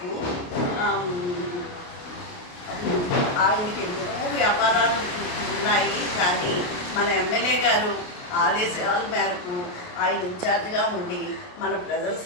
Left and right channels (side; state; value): right; late; 28 ms